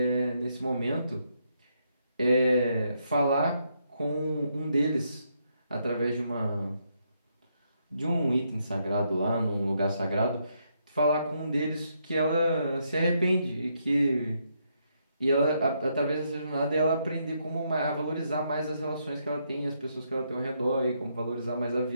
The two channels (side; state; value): both; inverted; correlation -0.77